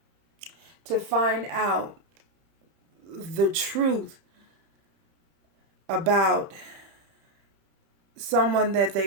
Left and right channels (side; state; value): left; late; 30 ms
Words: the truth about someone that